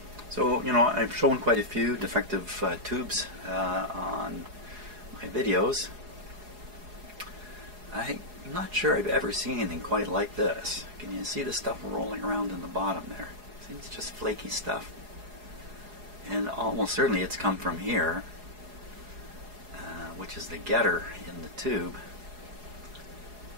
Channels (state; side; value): late; left; 4.8 ms